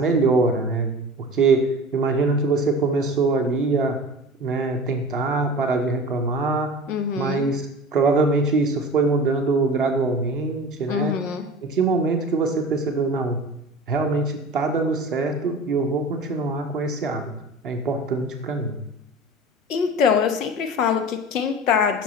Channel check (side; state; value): both; normal; correlation 0.36